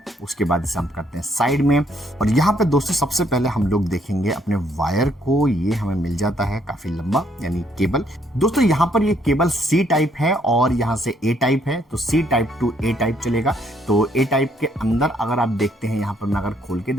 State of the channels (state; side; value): normal; both; correlation 0.69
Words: उसके बाद इसे हम करते हैं साइड में। और यहाँ पे दोस्तों सबसे पहले हम लोग देखेंगे अपने वायर को। ये हमें मिल जाता है काफी लंबा, यानी केबल। दोस्तों यहाँ पर ये केबल C टाइप है और यहाँ से A टाइप है, तो C type two A type चलेगा। तो A टाइप के अंदर अगर आप देखते हैं, यहाँ पर मैं अगर खोल के